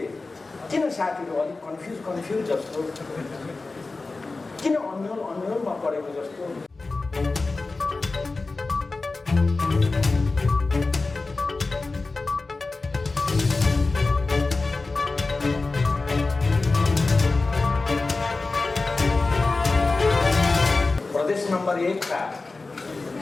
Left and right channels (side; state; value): right; quieter; 3.6 dB